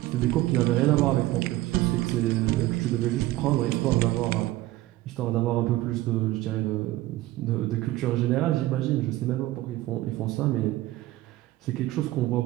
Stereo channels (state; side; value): quieter; left; 16.9 dB